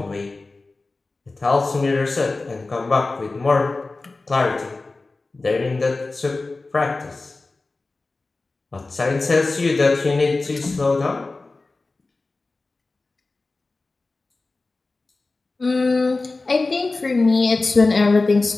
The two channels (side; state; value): right; quieter; 3.4 dB